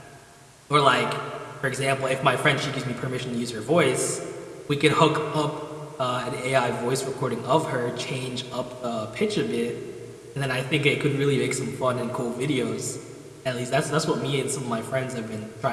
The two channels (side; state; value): both; identical; correlation 1.00